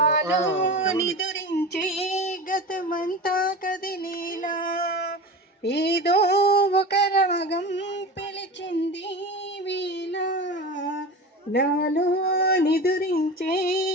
నిదురించే గతమంతా కదిలేలా. ఏదో ఒక రాగం పిలిచింది వేళ, నాలో నిదురించే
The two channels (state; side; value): normal; both; correlation 0.30